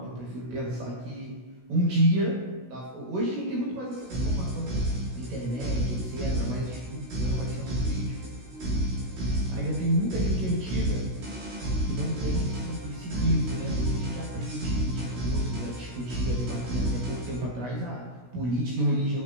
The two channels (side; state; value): left; late; 16 ms